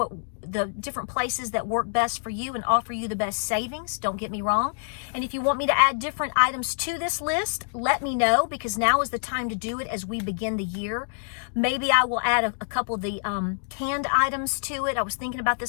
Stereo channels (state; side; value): silent; right; digital silence